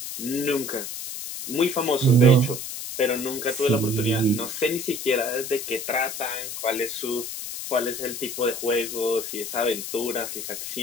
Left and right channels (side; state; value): left; noise; hiss, 7 dB below the sound